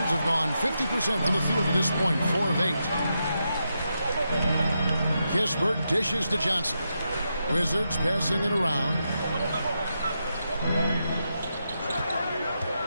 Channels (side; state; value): both; inverted; correlation -0.85